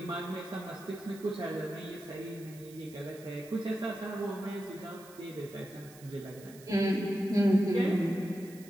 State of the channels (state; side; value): noise; right; hiss, 21 dB below the sound